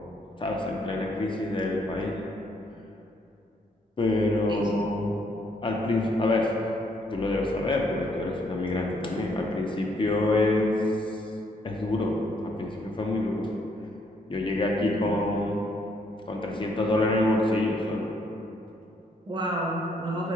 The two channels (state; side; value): normal; both; correlation 0.70